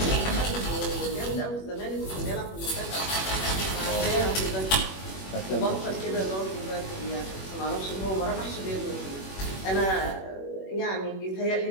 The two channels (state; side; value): late; right; 21 ms